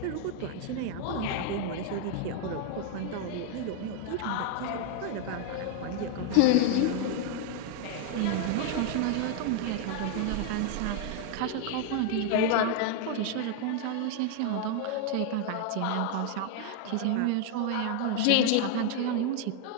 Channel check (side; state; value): both; different; correlation 0.00